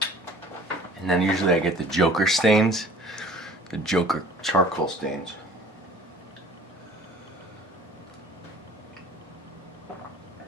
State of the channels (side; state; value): both; normal; correlation 0.48